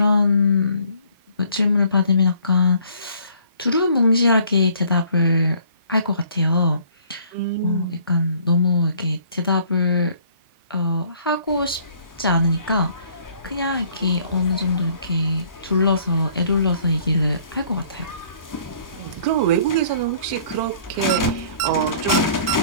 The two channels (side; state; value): both; inverted; correlation -0.58